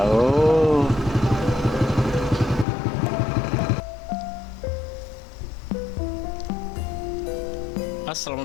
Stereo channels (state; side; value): drops out; right; at 2.7 s